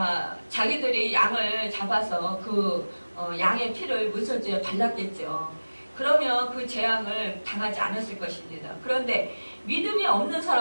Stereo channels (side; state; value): both; inverted; correlation -1.00